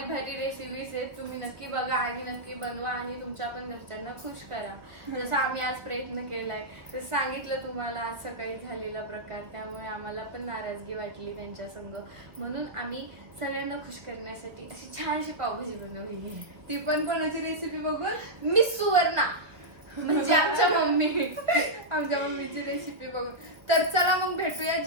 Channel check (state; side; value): late; left; 1.2 ms